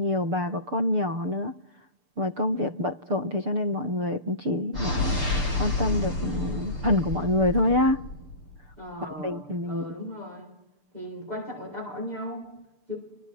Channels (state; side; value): late; left; 6.8 ms